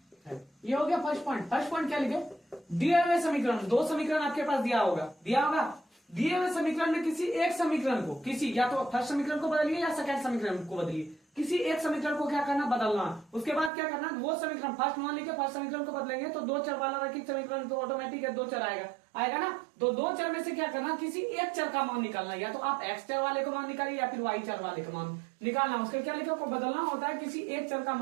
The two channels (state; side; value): drops out; left; at 13.7 s